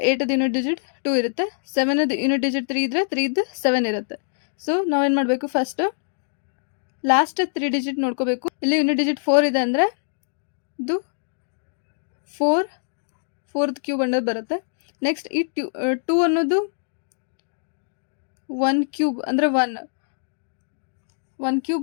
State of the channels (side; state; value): right; silent; digital silence